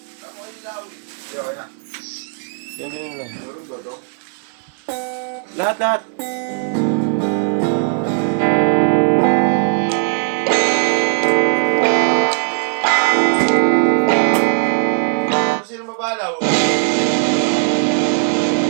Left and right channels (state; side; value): silent; left; 59 dB below the other